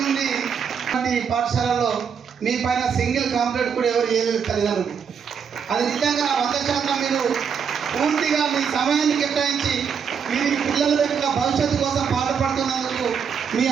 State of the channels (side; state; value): left; quieter; 6.8 dB